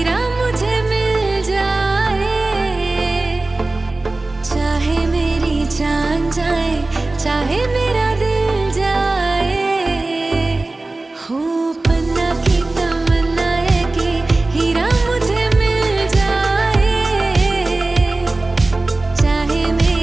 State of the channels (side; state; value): left; quieter; 3.0 dB